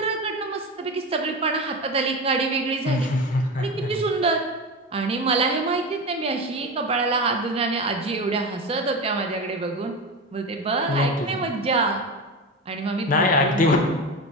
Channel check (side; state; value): both; normal; correlation 0.22